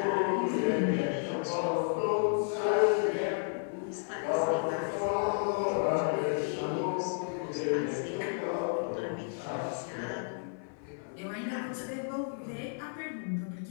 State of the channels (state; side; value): silent; right; 56 dB below the other